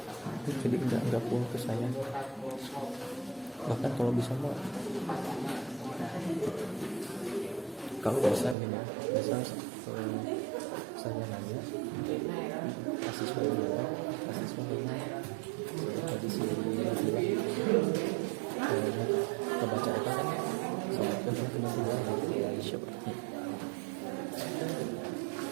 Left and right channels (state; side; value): drops out; left; at 8.6 s